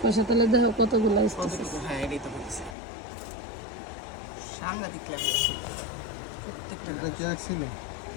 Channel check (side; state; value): right; drops out; at 2.8 s